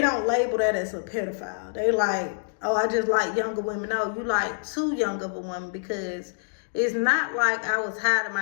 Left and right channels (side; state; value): right; silent; digital silence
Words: don't label that as a pedophile. They like, oh, I just like younger women. No, you like too young of a woman, because it's not like I was hiding